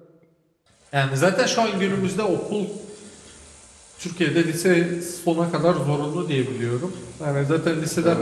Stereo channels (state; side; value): identical; both; correlation 1.00